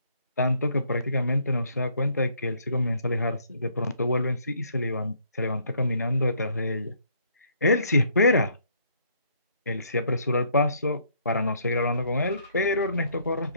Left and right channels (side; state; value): both; inverted; correlation -0.66